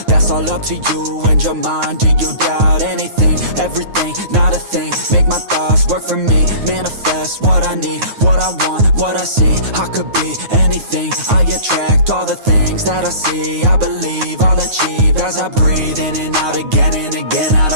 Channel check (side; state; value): left; late; 9.4 ms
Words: that's all up to you and your mind. Do you doubt anything, everything, not a thing? Make my thoughts work for me, manifest what I need, what I want, what I see. I could be anything, I attract all the things that I see. I believe I'll achieve as I breathe in and out again and again. I